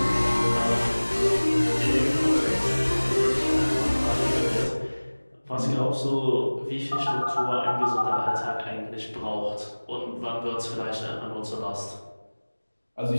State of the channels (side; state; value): both; inverted; correlation -1.00